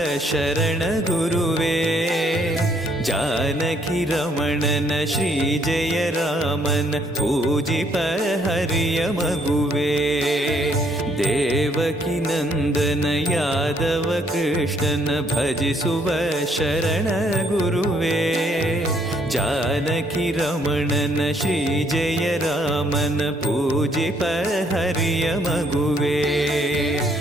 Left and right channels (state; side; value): normal; both; correlation 0.67